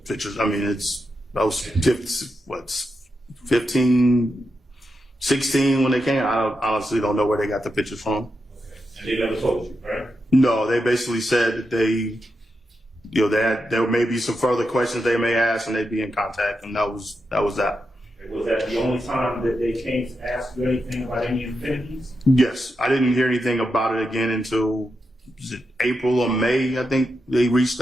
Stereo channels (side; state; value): both; normal; correlation 0.86